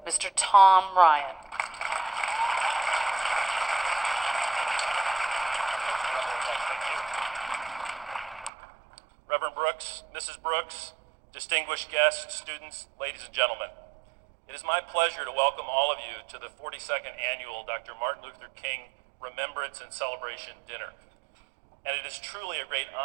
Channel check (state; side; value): drops out; left; at 8.5 s